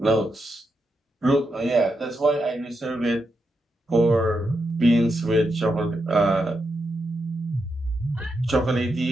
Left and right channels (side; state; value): both; normal; correlation 0.84